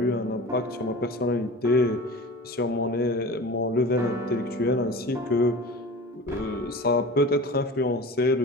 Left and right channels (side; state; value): both; normal; correlation 0.36